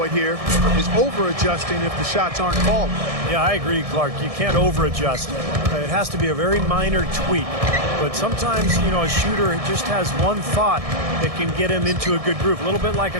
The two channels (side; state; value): left; late; 1.6 ms